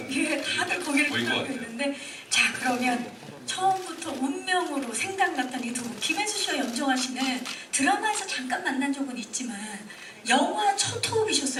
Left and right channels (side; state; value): both; identical; correlation 1.00